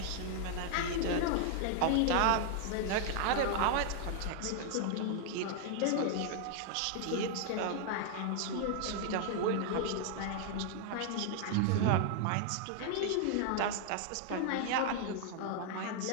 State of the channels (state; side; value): different; both; correlation 0.00